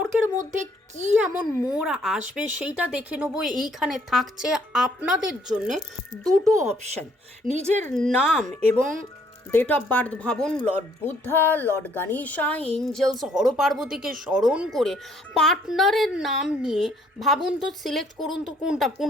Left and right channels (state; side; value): normal; both; correlation 0.65